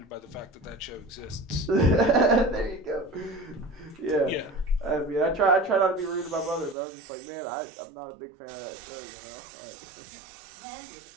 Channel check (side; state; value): left; drops out; at 6.8 s